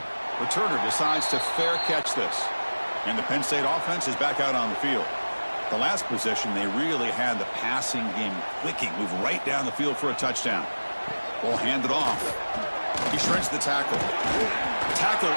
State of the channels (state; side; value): inverted; both; correlation -1.00